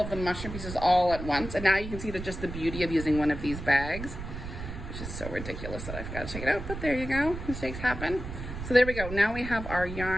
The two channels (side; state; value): right; noise; rumble, 8 dB below the sound